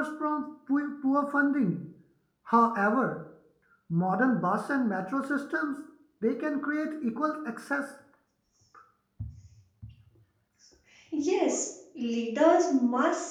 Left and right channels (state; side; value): identical; both; correlation 1.00